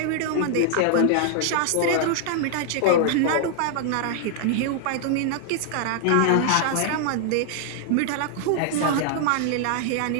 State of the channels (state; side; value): different; both; correlation -0.01